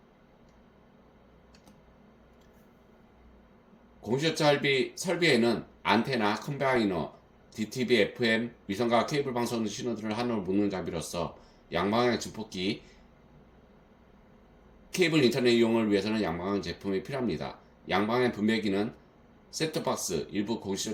공시청 설비에는 안테나, 컴바이너, DTV, FM, 위성과 케이블 방송 신호들을 하나로 묶는 장비로서 양방향 증폭기, 케이블 인터넷 이용을 위해서는 양방향 제품이 필요합니다. 양방향 분배기는 셋톱박스, 일부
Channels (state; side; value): identical; both; correlation 1.00